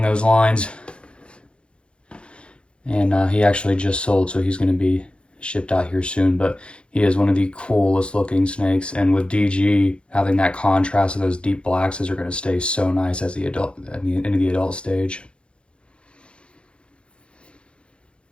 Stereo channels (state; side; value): late; right; 0.057 ms